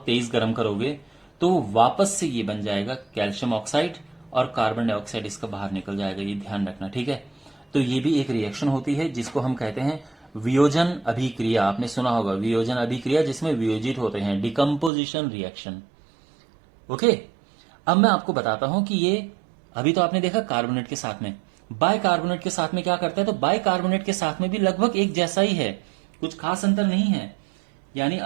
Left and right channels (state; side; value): drops out; left; at 14.9 s